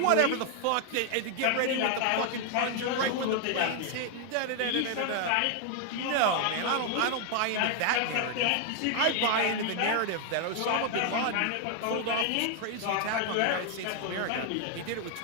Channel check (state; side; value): different; both; correlation 0.00